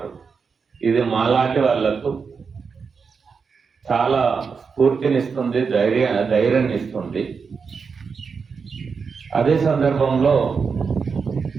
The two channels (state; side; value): quieter; left; 5.5 dB